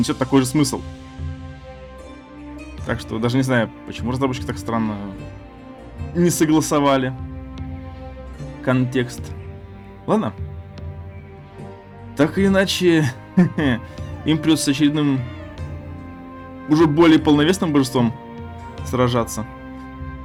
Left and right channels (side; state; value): both; identical; correlation 1.00